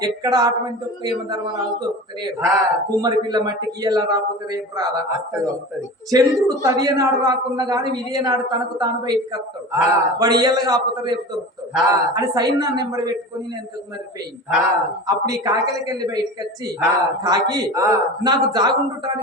ఎక్కడ అటువంటి ఒక్క యమధర్మరాజు దొరుకుతలేడు కుమ్మరి పిల్ల మట్టికి ఎలా రాకపోతే రేపు రాదా చంద్రుడు తదియనాడు రాకున్నా గాని విజయనాడు తనకు తాను బయటికి వస్తాడు వాడు ఇయ్యల కాకపోతే రేపు దొరుకుతాడు అని సైన్యాన్ని ఎంబడి పెట్టుకొని నేను ఎంతకు మరిపోయింది అప్పుడు ఈ కాకిలకి వెళ్ళి బయటకు వచ్చి కాకి నాకు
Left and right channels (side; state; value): both; normal; correlation 0.33